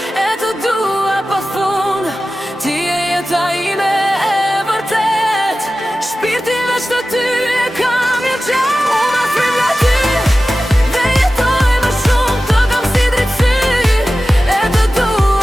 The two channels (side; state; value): both; normal; correlation 0.95